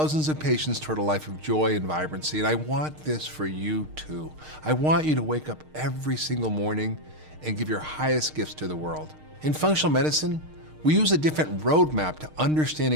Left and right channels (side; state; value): left; late; 6.5 ms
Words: of patients toward a life of joy and vibrancy, and I want this for you too. I want you to wake up every single morning and give your highest gifts to the world. In functional medicine, we use a different roadmap to